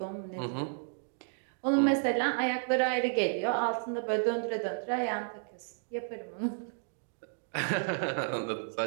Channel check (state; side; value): silent; left; 56 dB below the other